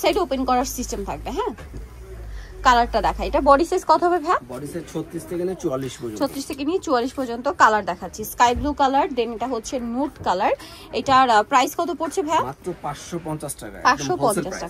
সাইড ওপেন করার সিস্টেম থাকবে। হ্যাঁ, কালারটা দেখা, এটা বডি সাইজ কত হবে ভাই? বডি সাইজ 36 থেকে নিয়ে 44 পর্যন্ত। 36 থেকে নিয়ে 44 পর্যন্ত কালার দেখাচ্ছি। স্কাই ব্লু কালার, দেন এটা হচ্ছে নুড কালার। এটার প্রাইস কত পড়ছে ভাই? মাত্র 550 টাকা। 550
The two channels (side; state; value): both; identical; correlation 1.00